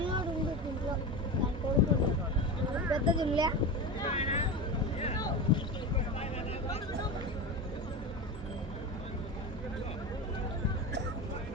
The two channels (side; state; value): both; normal; correlation 0.24